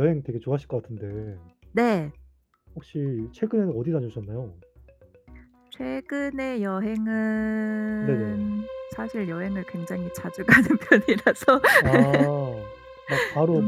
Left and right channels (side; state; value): both; identical; correlation 1.00